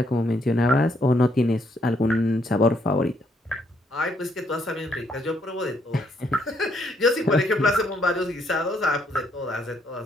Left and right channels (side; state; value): both; normal; correlation 0.72